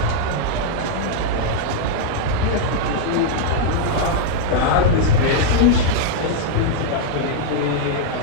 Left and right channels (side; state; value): both; different; correlation -0.01